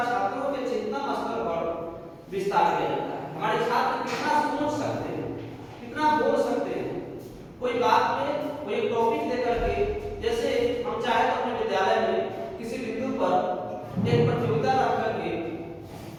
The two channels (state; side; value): identical; both; correlation 1.00